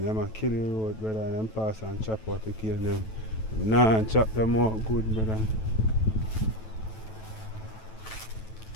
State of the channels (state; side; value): late; right; 9.2 ms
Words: them a kill the road, brother, and them pass and chop out the cane them. Nah, and chop them out good, brother.